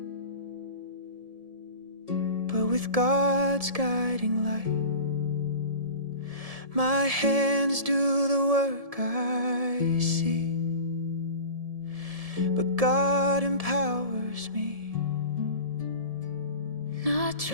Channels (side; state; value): left; late; 1.7 ms